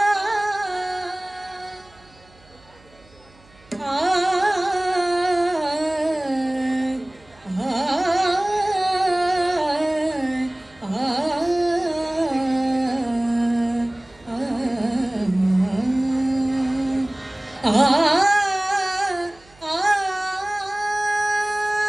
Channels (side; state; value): right; noise; hum, 28 dB below the sound